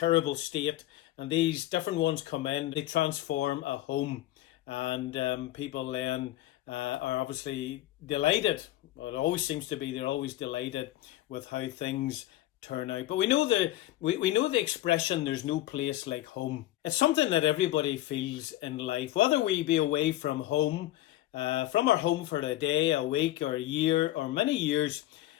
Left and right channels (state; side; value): quieter; right; 14.8 dB